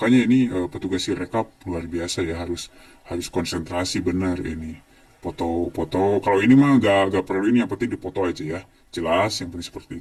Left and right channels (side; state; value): both; identical; correlation 1.00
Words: ini petugas Sirekap luar biasa ya, harus konsentrasi benar ini. Foto-foto kalau ini mah gak perlu ini, yang penting dipoto aja ya. Jelas, yang penting